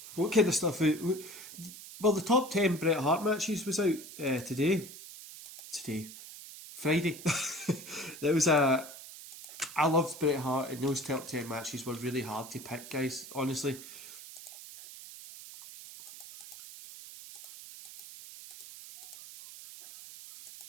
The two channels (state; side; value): noise; right; hiss, 14 dB below the sound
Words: What kind of stuff? Well, the top 10 Bret Hart matches was out today. Friday. There was a. I loved Bret Hart, and those top 10 matches were really hard to pick, guys. Honestly.